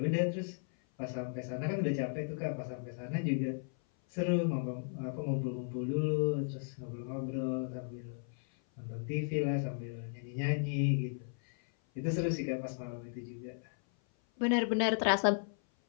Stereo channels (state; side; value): silent; right; 54 dB below the other